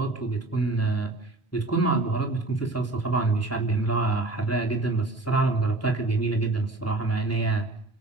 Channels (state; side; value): quieter; left; 3.0 dB